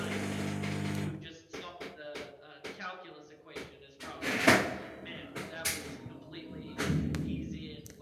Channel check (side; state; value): both; identical; correlation 1.00